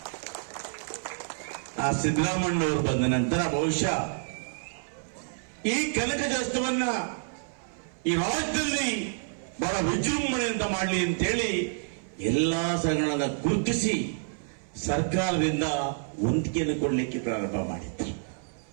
ಆ ಸಿದ್ದರಾಮಣ್ಣವರು ಬಂದ ನಂತರ ಬಹುಶಃ ಈ ಕನಕದಾಸವನ್ನ ಈ ರಾಜ್ಯದಲ್ಲಿ ಬಹಳ ವಿಜೃಂಭಣೆಯಿಂದ ಮಾಡಲಿ ಅಂತೇಳಿ ಎಲ್ಲಾ ಸಂಘಗಳನ್ನ ಗುರುತಿಸಿ ಸರ್ಕಾರದಿಂದ ವಂತಿಗೆಯನ್ನು ಕೊಡಲಿಕ್ಕೆ ಪ್ರಾರಂಭ ಮಾಡಿದ್ರು.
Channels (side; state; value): left; silent; 58 dB below the other